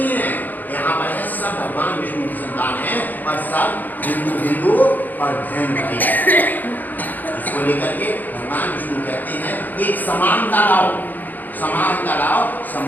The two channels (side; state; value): right; late; 0.085 ms